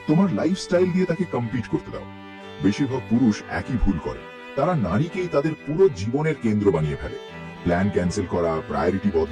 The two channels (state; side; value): identical; both; correlation 1.00